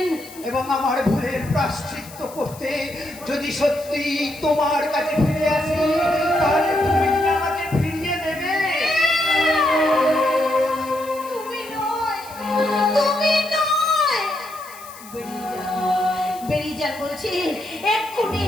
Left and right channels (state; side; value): noise; left; hiss, 18 dB below the sound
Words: এবং আমার ভুলের প্রায়শ্চিত্ত করতে যদি সত্যি তোমার কাছে ফিরে আসি, তাহলে তুমি কি আমাকে ফিরিয়ে দেবে? তুমি নয়, তুমি নয়, বেরিয়ে যান বলছি, এক্ষুনি